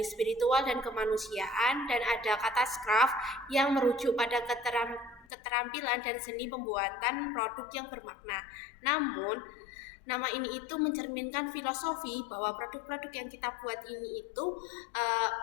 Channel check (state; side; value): drops out; right; at 5.2 s